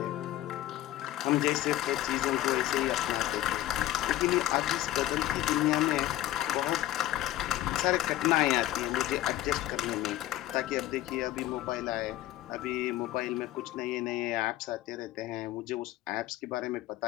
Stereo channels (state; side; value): quieter; right; 14.6 dB